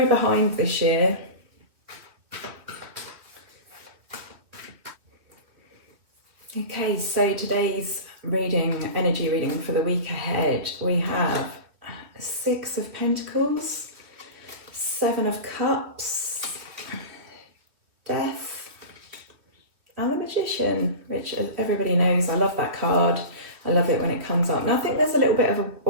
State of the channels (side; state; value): left; late; 3.0 ms